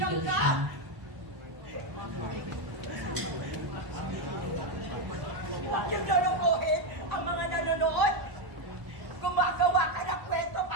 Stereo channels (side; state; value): left; late; 1.0 ms